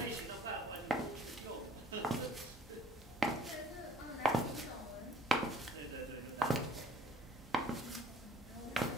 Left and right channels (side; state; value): both; normal; correlation 0.55